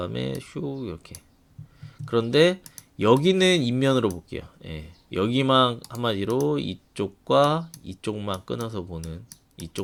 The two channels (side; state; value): both; identical; correlation 1.00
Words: 슉 이렇게. 그런데 여기는 인면으로 볼게요. 여기만 한마디로 이쪽과 이쪽만 끊어서 보는,